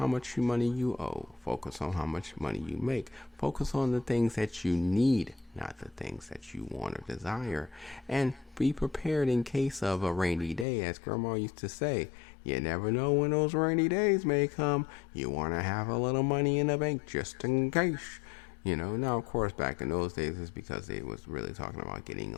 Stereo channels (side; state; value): right; drops out; at 10.7 s